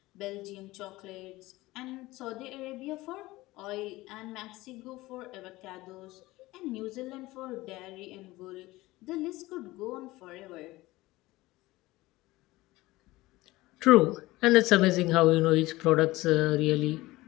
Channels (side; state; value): right; quieter; 19.1 dB